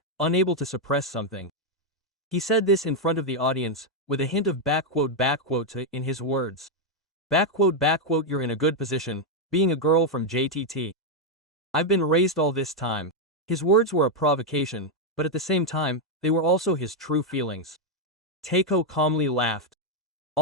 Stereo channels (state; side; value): normal; both; correlation 0.01